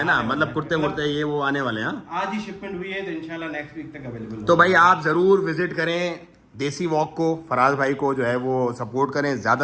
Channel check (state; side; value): identical; both; correlation 1.00